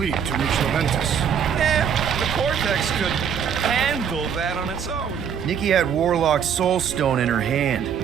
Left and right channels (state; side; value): quieter; left; 7.7 dB